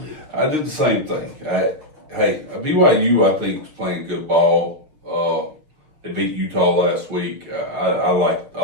I did the same thing. BYU, I think, is playing good ball. They beat Utah last week. I like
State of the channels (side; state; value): left; late; 6.5 ms